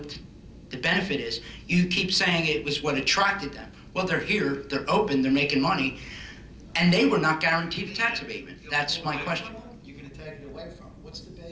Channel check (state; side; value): identical; both; correlation 1.00